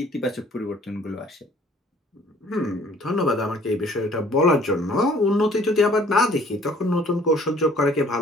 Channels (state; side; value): normal; both; correlation 0.56